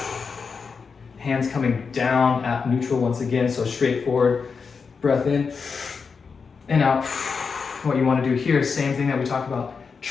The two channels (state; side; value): quieter; right; 5.3 dB